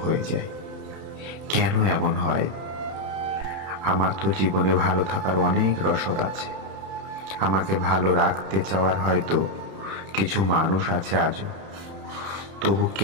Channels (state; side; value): late; left; 31 ms